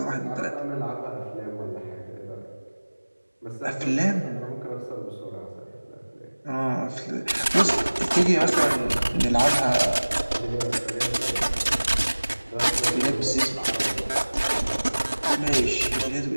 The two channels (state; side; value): inverted; both; correlation -1.00